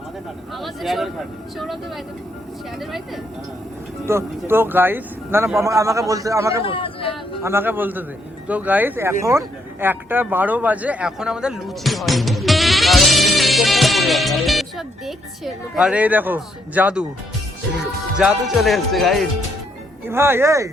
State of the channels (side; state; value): both; normal; correlation 0.74